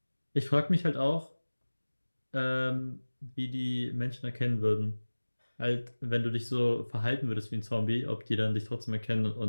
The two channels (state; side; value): inverted; both; correlation -1.00